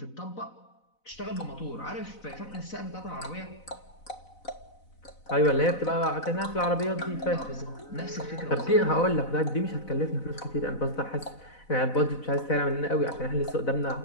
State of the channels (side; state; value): right; late; 4.0 ms